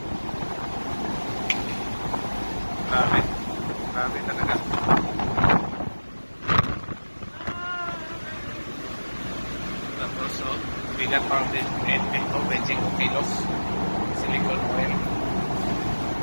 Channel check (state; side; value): inverted; both; correlation -1.00